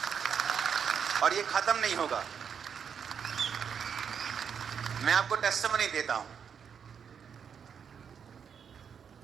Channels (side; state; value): left; quieter; 7.2 dB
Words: और ये खत्म नहीं होगा। मैं आपको टेस्टिमनी देता हूं।